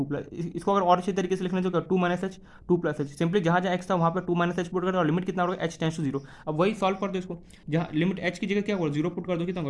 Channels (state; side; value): identical; both; correlation 1.00